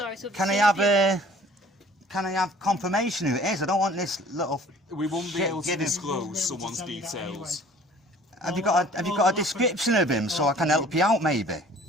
I have confirmation who it is? I don't want this little. We won't be able to disclose someone's details. Have you got a description of him so I can help you out, maybe?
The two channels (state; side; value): normal; both; correlation 0.52